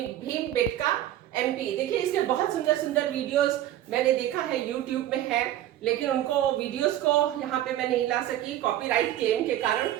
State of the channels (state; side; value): quieter; left; 12.8 dB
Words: एमपी। देखिए इसके बहुत सुंदर सुंदर वीडियोस मैंने देखा है, यूट्यूब में है, लेकिन उनको वीडियोस को यहाँ पे मैं नहीं ला सकी कॉपीराइट क्लेम के कारण।